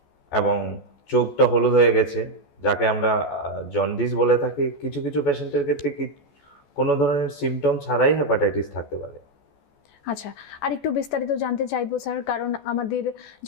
এবং চোখটা হলুদ হয়ে গেছে, যাকে আমরা জন্ডিস বলে থাকি। কিছু কিছু পেশেন্টের ক্ষেত্রে কোনো ধরনের সিমটম ছাড়াই হেপাটাইটিস থাকতে পারে। আচ্ছা, আর একটু বিস্তারিত জানতে চাইবো স্যার, কারণ আমাদের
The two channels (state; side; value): late; right; 14 ms